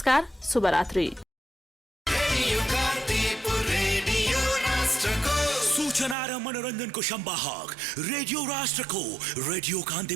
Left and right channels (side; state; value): left; drops out; at 6.2 s